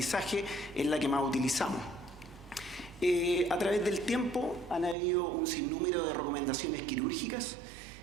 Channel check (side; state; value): left; drops out; at 5.0 s